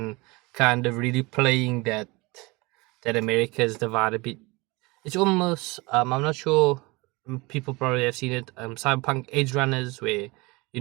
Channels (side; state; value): left; quieter; 24.7 dB